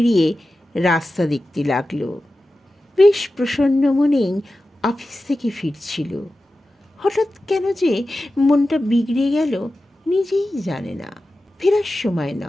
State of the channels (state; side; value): normal; both; correlation 0.94